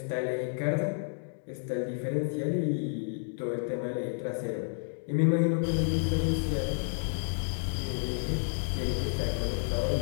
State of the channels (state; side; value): silent; right; digital silence